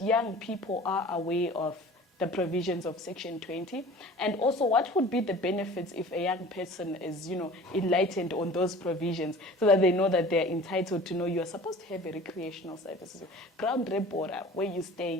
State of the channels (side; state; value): both; normal; correlation 0.43